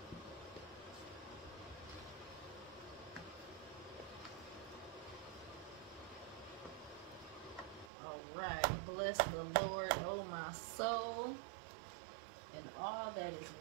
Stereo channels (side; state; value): left; drops out; at 7.9 s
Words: Alright. Bless the Lord, oh my soul, and all that is